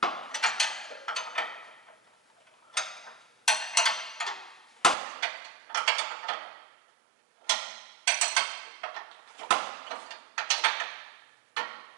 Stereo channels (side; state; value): left; drops out; at 5.0 s